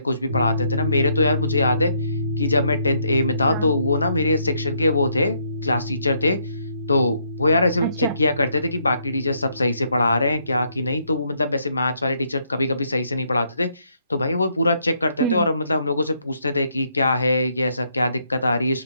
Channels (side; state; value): both; inverted; correlation -0.72